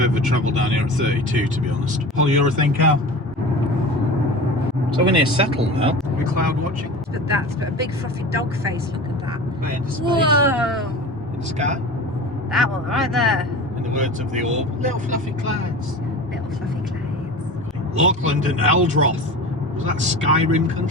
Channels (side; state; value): both; normal; correlation 0.34